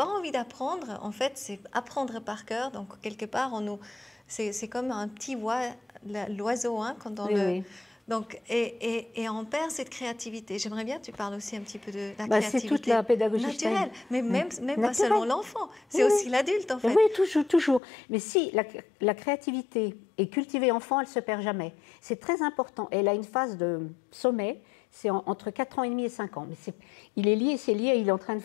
envie d'apprendre. En fait, c'est apprendre par cœur. Donc, quelque part, c'est comme un petit l'oiseau, hein, quand on le... Donc, et on perd cette créativité. J'aimerais bien que tu parles aussi un petit peu de la créativité. C'est toute la pédagogie naturelle, mais même pas seulement l'enfant, c'est aussi l'adulte en fait. Oui, toujours. Mais si la créativité est cultivée enfant, elle ne se perd jamais. C'est très important. Elle a une phase de sommet, c'est entre 4 ans et demi et 5 ans. Mais c'est lié, il est en train de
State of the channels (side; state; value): right; drops out; at 17.8 s